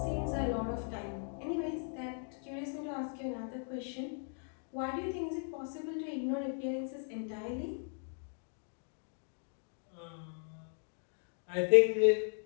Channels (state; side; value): silent; right; 53 dB below the other